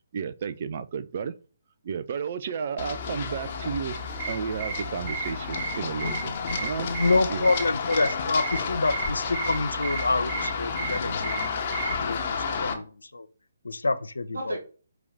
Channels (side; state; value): both; inverted; correlation -0.79